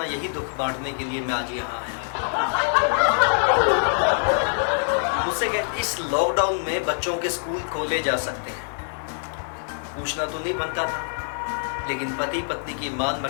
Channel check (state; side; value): silent; right; digital silence